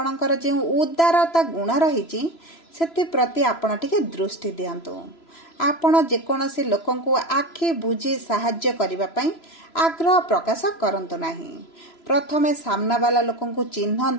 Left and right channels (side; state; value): right; late; 3.0 ms